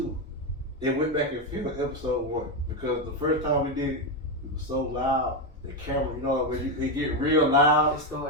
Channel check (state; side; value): normal; both; correlation 0.08